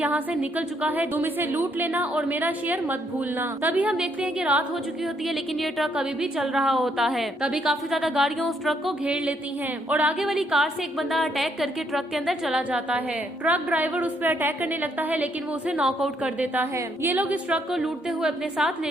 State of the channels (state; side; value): normal; both; correlation 0.72